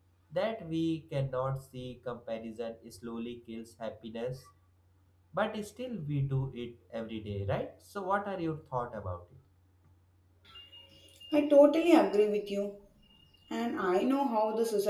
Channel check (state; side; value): identical; both; correlation 1.00